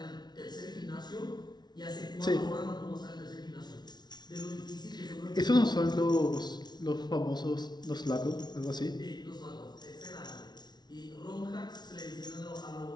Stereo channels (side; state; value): right; late; 0.20 ms